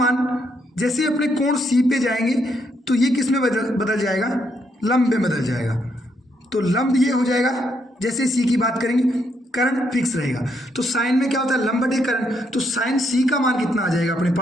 जैसे अपने कोण सी पे जाएंगे तो ये किस में बदल जाएगा लंब में बदल जाएगा। तो लंब ये हो जाएगा, जैसे सी की बात करेंगे कर्ण फिक्स रहेगा, तो साइन में क्या होता है लंब बटे कर्ण, तो साइन सी का मान कितना आ जाएगा अपने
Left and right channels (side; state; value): both; normal; correlation 0.75